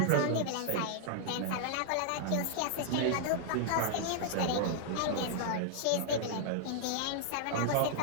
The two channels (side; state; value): both; different; correlation -0.01